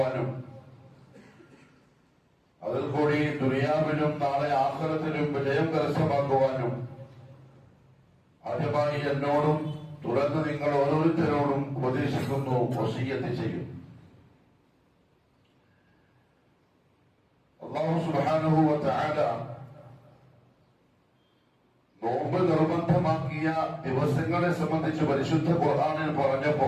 അതിൽ കൂടി ദുനിയാവിലും നാളെ ആഖിറത്തിലും വിജയം കരസ്ഥമാക്കുവാനും ആദ്യമായി എന്നോടും തുടർന്ന് നിങ്ങൾ ഓരോരുത്തരോടും ഉപദേശിക്കുന്നു, വസിയ്യത്ത് ചെയ്യും. അല്ലാഹു സുബ്ഹാനഹു വ തആല നോമ്പ് നിർബന്ധമാക്കിയ ദിവസങ്ങളെ സംബന്ധിച്ച് പരിശുദ്ധ ഖുർആനിൽ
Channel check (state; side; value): identical; both; correlation 1.00